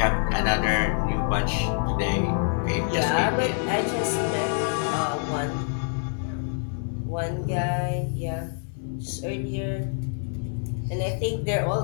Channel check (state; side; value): silent; right; 61 dB below the other